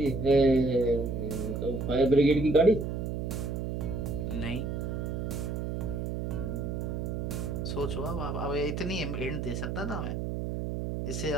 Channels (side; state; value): right; noise; hum, 3 dB below the sound